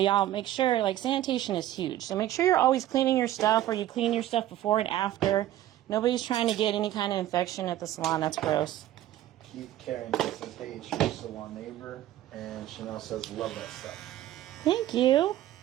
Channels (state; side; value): quieter; left; 13.5 dB